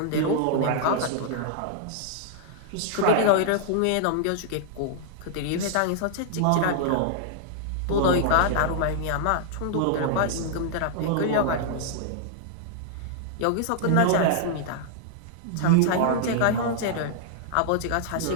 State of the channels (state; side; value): different; both; correlation -0.01